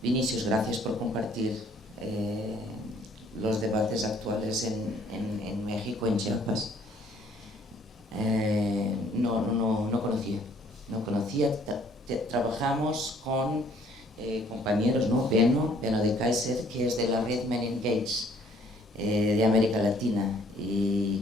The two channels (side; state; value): both; normal; correlation 0.61